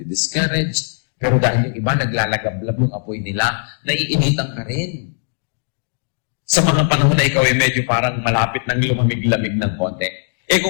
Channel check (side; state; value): right; silent; digital silence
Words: Pero dahil yung iba naglalagablab yung apoy nila, naiinitan ka rin. Sa mga panahon na ikaw ay medyo parang malapit ng lumamig-lamig ng konti.